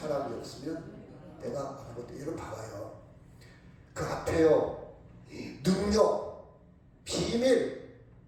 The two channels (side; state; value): both; identical; correlation 1.00